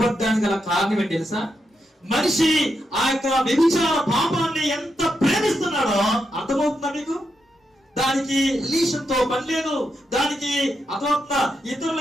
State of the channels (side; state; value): both; normal; correlation 0.84